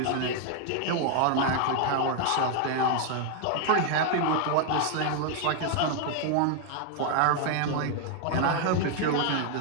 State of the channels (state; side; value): different; both; correlation 0.00